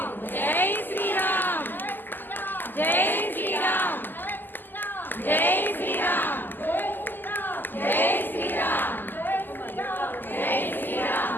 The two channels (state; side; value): late; right; 0.090 ms